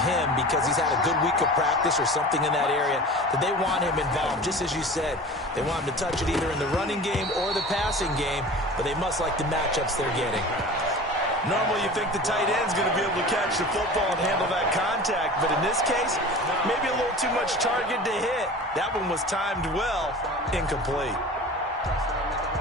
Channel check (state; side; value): normal; both; correlation 0.37